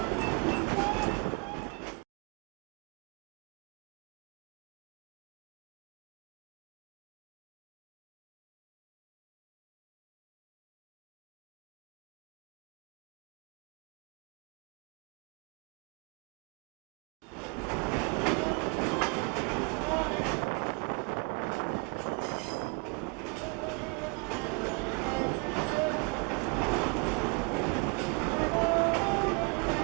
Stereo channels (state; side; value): quieter; left; 34.1 dB